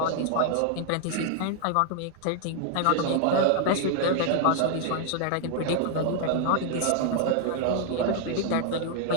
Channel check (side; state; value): both; different; correlation 0.00